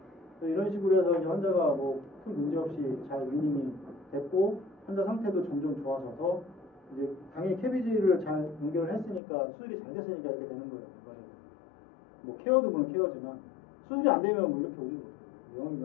이런 식으로 해서 이제 환자가 뭐 큰 문제 없이 잘 위닝이 됐고 환자 상태도 점점 좋아져서 이제 당연히 캐비지를 잘 연결을 했으니까 수술이 잘 됐으니까 이렇게 되는 거예요. 뭐 케어도 물론 케어지만 수술이 안 되면 뭐 이렇게 오지도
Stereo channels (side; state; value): right; drops out; at 9.2 s